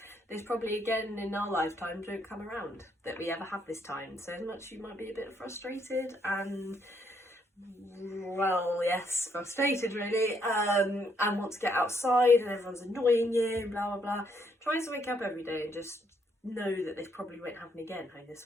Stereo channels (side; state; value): both; normal; correlation 0.72